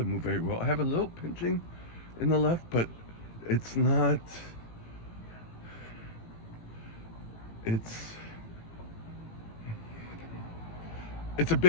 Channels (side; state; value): right; late; 18 ms